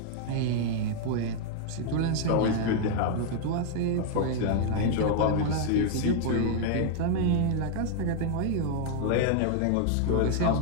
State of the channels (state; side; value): different; both; correlation 0.00